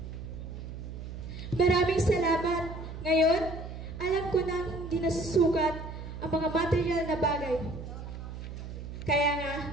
Maraming salamat. Ngayon, alam ko na hindi nasusukat ang mga material na bagay. Kaya nga,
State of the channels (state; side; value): noise; right; hum, 9 dB below the sound